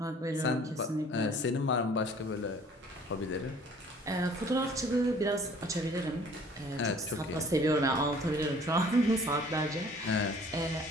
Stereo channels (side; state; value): both; normal; correlation 0.53